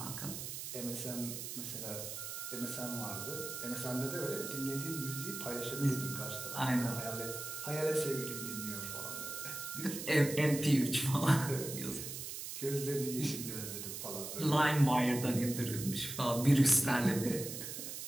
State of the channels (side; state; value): right; noise; hiss, 7 dB below the sound